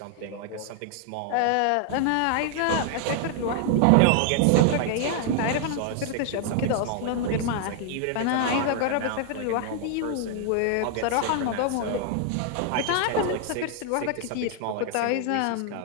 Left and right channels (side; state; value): both; different; correlation 0.00